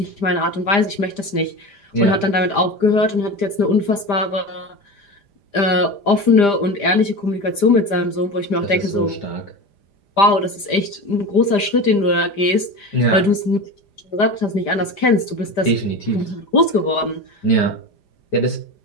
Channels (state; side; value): late; right; 5.0 ms